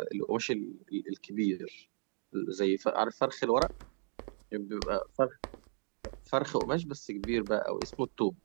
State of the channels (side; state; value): left; silent; 54 dB below the other